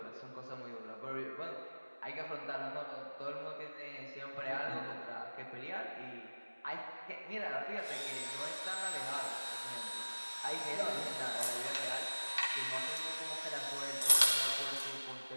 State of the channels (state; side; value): inverted; both; correlation -1.00